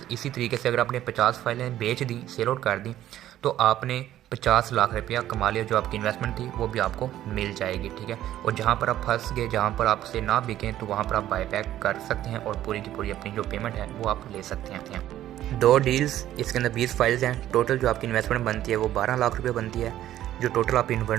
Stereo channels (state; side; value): quieter; left; 12.8 dB